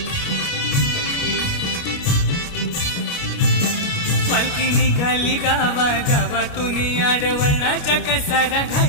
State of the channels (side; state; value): right; late; 29 ms